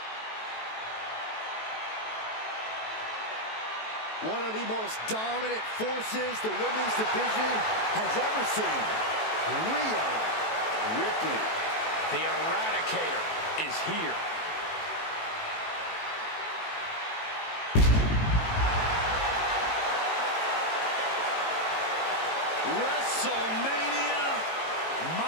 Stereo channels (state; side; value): late; right; 18 ms